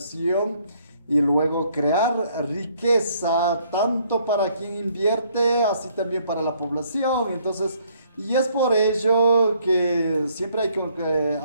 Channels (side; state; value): both; inverted; correlation -0.66